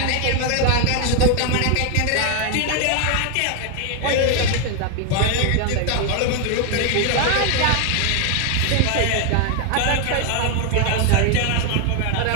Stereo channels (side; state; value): both; different; correlation 0.01